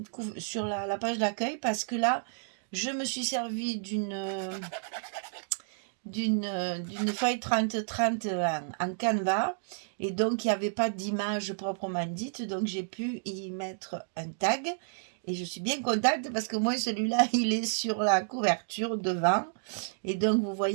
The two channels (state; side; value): silent; left; digital silence